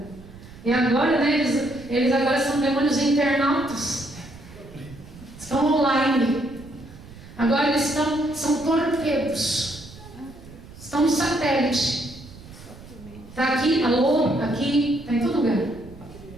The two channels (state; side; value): noise; right; rumble, 18 dB below the sound